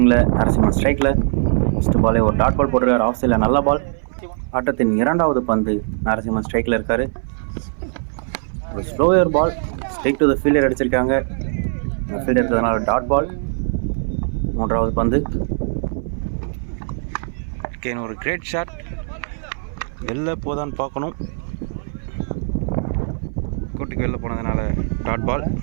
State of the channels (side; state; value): left; silent; 59 dB below the other